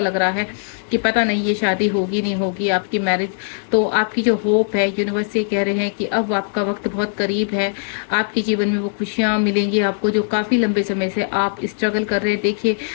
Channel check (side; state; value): right; silent; digital silence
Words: रहा है कि पता नहीं ये शादी होगी नहीं होगी, आपकी मैरिज। तो आपकी जो होप है, यूनिवर्स से कह रहे हैं कि अब आपका वक्त बहुत करीब है, आपके जीवन में वो खुशियाँ मिलेंगी आपको जो काफ़ी लंबे समय से आप स्ट्रगल कर रहे हैं। देखिए,